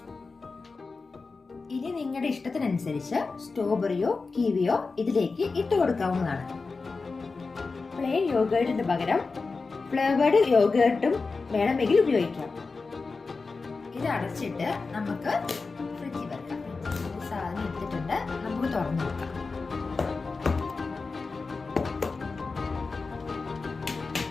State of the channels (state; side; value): quieter; right; 4.2 dB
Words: ഇനി നിങ്ങളുടെ ഇഷ്ടത്തിനനുസരിച്ച് സ്ട്രോബെറിയോ കിവിയോ ഇതിലേക്ക് ഇട്ട് കൊടുക്കാവുന്നതാണ്. പ്ലെയിൻ യോഗേർട്ടിന് പകരം ഫ്ലേവേർഡ് യോഗേർട്ടും വേണമെങ്കിൽ ഉപയോഗിക്കാം. ഇത് അടച്ചിട്ട് നമുക്ക് ഫ്രിഡ്ജിൽ വെക്കാം. സാധനം എടുത്തിട്ടുണ്ട്, നമുക്ക് തുറന്നു നോക്കാം.